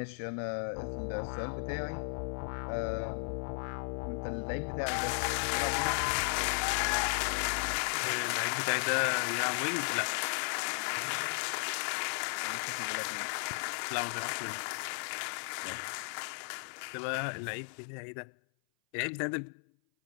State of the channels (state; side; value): silent; right; 54 dB below the other